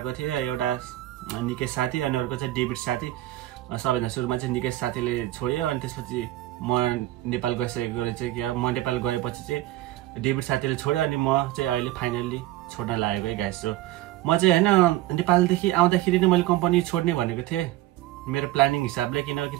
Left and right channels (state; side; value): quieter; left; 15.8 dB